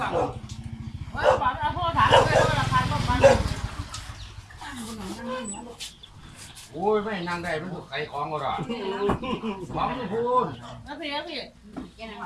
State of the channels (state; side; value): identical; both; correlation 1.00